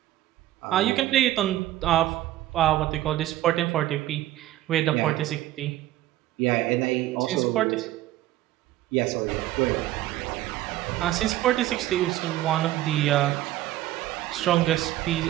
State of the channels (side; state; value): left; quieter; 14.7 dB